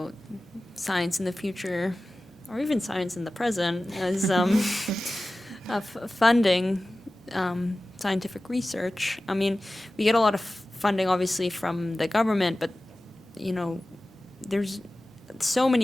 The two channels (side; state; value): both; normal; correlation 0.96